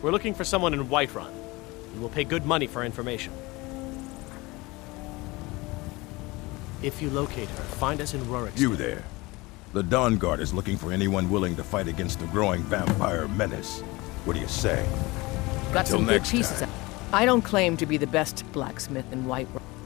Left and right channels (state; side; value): quieter; right; 22.7 dB